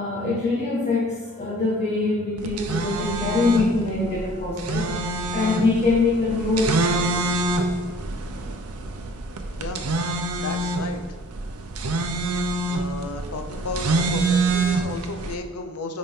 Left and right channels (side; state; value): both; normal; correlation 0.52